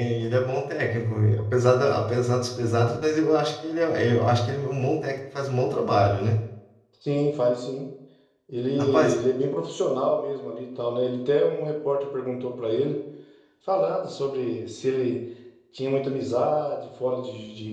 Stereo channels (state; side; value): identical; both; correlation 1.00